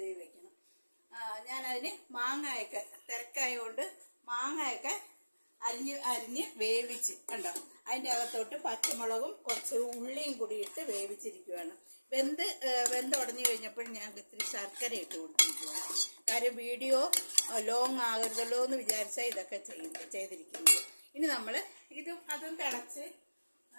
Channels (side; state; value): both; inverted; correlation -1.00